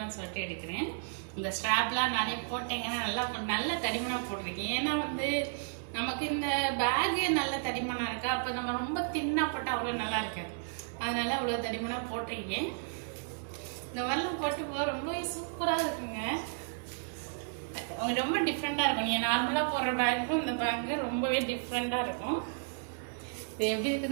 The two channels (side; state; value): left; silent; 55 dB below the other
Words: சொல்லிட்டு எடுக்கிறேன். இந்த ஸ்ட்ராப்லாம் நானே போட்டேங்க. நல்ல தடிமனா போட்டிருக்கேன். ஏன்னா வந்து நமக்கு இந்த பேகு நல்ல தடிமனா இருக்கா, அப்ப நம்ம ரொம்ப தின்னா போட்டா அவ்வளவு நல்லா இருக்காது. அதனால அவ்வளவு தடிமனா போட்டிருக்கேன். இந்த மாதிரிலாம் போட்டு ரொம்ப சூப்பரா இருக்குங்க. ரொம்ப டிஃப்ரெண்டா இருக்கும். நீங்க நார்மலா போடுற பேக்கும் இந்த பேக்கு ரொம்பவே டிஃப்ரெண்டா இருக்கும். இது எப்படி